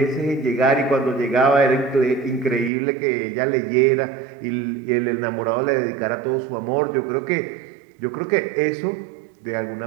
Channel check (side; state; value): left; drops out; at 2.7 s